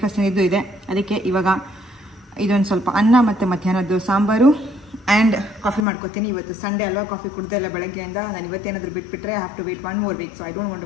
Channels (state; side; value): drops out; right; at 5.9 s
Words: ಏನಿದ್ದು ಇದೆ. ಅದಕ್ಕೆ ಇವಾಗ ಇದೊಂದು ಸ್ವಲ್ಪ ಅನ್ನ ಮತ್ತು ಮಧ್ಯಾಹ್ನದ್ದು ಸಾಂಬಾರು ಆ್ಯಂಡ್ ಕಾಫಿ ಮಾಡ್ಕೊತೀನಿ. ಇವತ್ತು ಸಂಡೇ ಅಲ್ವಾ, ಕಾಫಿ ಕುಡ್ದೆ ಇಲ್ಲ ಬೆಳಗ್ಗೆಯಿಂದ. ನಾನು ಇವತ್ತೇನಾದರೂ ಬಿಟ್ಬಿಟ್ರೆ I have to wait 1 more week, so I don't want